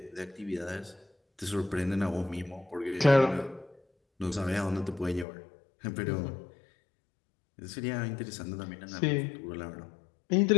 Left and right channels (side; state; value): right; drops out; at 5.2 s